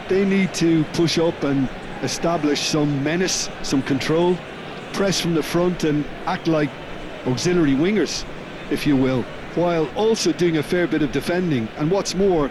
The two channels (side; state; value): both; identical; correlation 1.00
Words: They need to push up and establish some menace, some control, press from the front and act like auxiliary wingers, if you will, while also doing a fair bit of defending. And what's more,